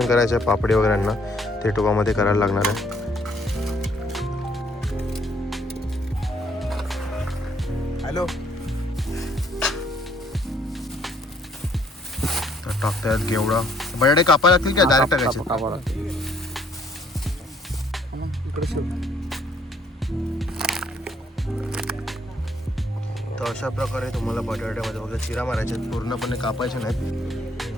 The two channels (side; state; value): both; normal; correlation 0.65